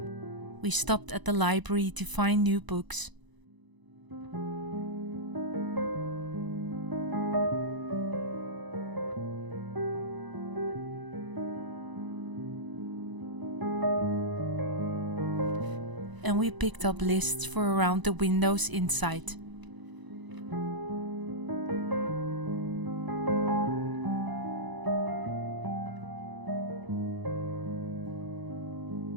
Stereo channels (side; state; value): left; late; 1.0 ms